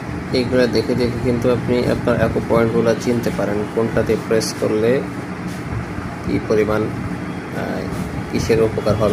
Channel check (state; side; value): identical; both; correlation 1.00